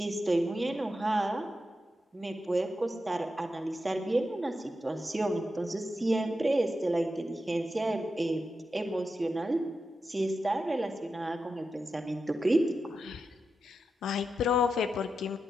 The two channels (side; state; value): both; normal; correlation 0.89